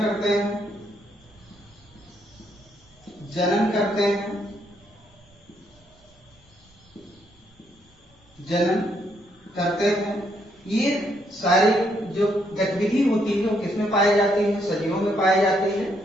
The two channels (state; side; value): normal; both; correlation 0.73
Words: करते हैं, जनन करते हैं, ये सारी जो गतिविधि होती है वो किसमें पाई जाती है? सजीवों में पाई जाती है।